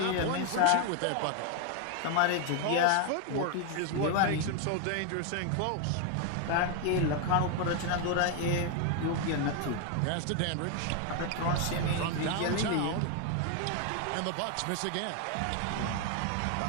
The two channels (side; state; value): both; different; correlation 0.01